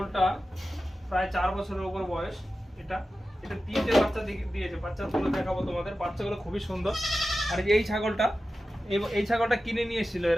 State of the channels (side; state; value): both; normal; correlation 0.93